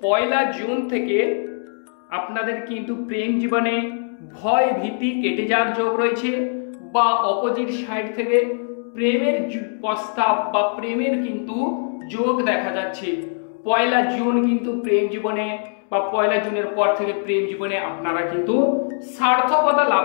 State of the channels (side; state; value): right; silent; digital silence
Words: 1 জুন থেকে আপনাদের কিন্তু প্রেম জীবনে ভয় ভীতি কেটে যাওয়ার যোগ রয়েছে, বা অপোজিট সাইড থেকে প্রেমের প্রস্তাব বা প্রেমের কিন্তু যোগ দেখা যাচ্ছে। 1 জুন কিন্তু প্রেম জীবনে বা 1 জুনের পর থেকে প্রেম জীবনে আপনারা কিন্তু সার্থকতা